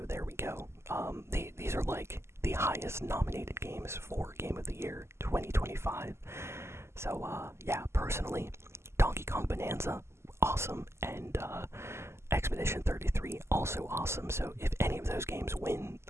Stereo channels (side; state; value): left; late; 0.13 ms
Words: There we go. These are like the highest nominated games for Game of the Year 2025. So yeah, personally, Donkey Kong Bonanza, awesome, and Expedition 33, also awesome. So if any of those games win,